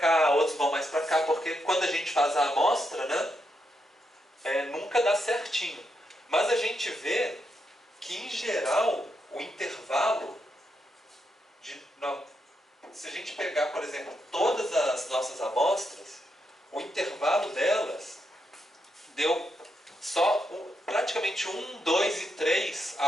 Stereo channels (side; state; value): both; normal; correlation 0.82